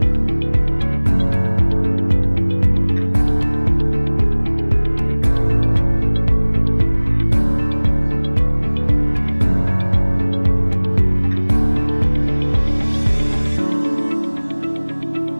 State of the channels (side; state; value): both; inverted; correlation -1.00